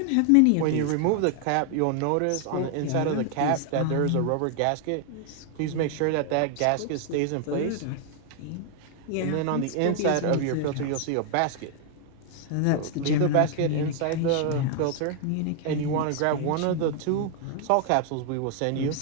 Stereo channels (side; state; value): both; different; correlation 0.00